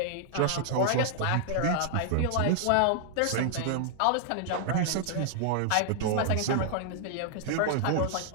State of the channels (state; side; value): different; both; correlation -0.01